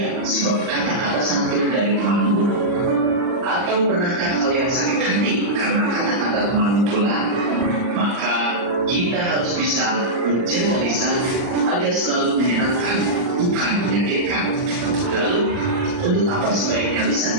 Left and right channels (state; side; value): late; left; 39 ms